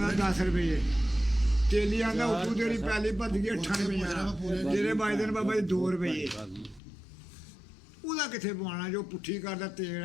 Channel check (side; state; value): right; drops out; at 6.8 s